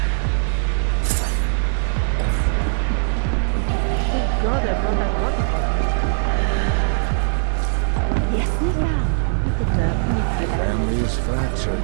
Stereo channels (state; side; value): silent; left; 65 dB below the other